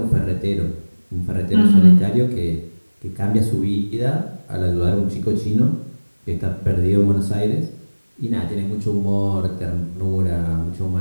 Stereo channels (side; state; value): both; inverted; correlation -1.00